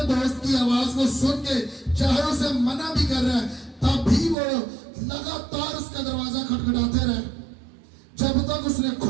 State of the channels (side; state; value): left; drops out; at 4.4 s